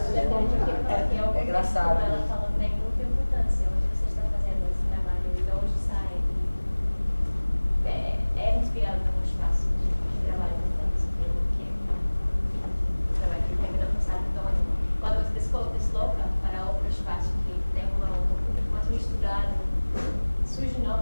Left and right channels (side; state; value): both; inverted; correlation -1.00